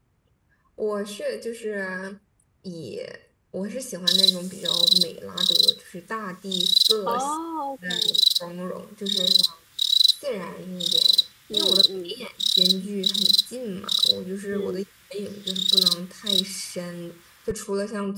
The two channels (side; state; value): both; identical; correlation 1.00